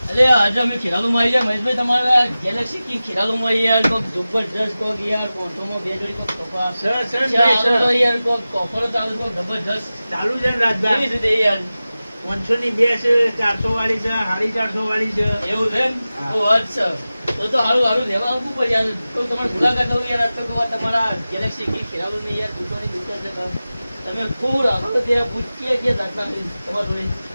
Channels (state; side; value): inverted; both; correlation -0.96